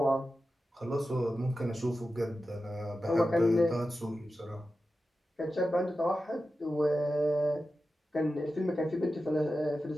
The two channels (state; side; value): normal; both; correlation 0.92